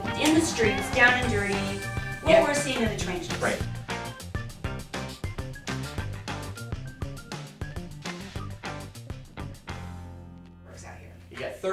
in the streets, down and dirty, what we're seeing in the trenches. Right. Works out here. You got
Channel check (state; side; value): identical; both; correlation 1.00